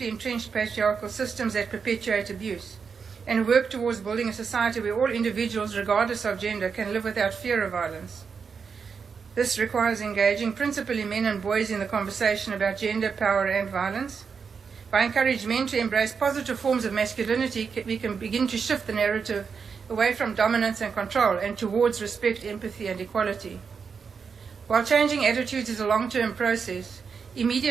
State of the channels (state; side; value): quieter; left; 5.9 dB